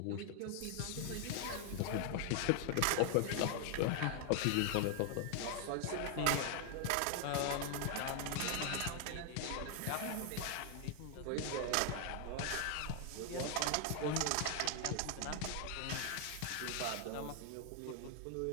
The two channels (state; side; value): different; both; correlation 0.00